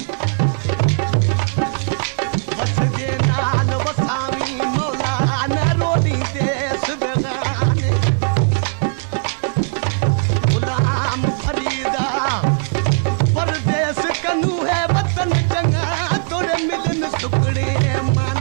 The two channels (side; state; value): left; silent; digital silence